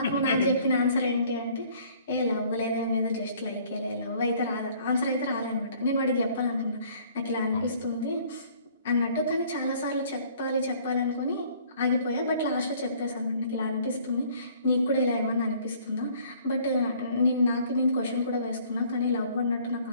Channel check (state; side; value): inverted; both; correlation -0.57